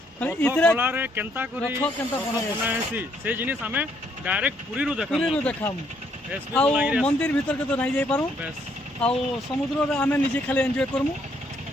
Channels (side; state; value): both; normal; correlation 0.70